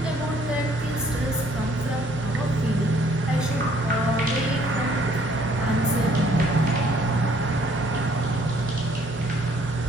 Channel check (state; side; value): normal; both; correlation 0.62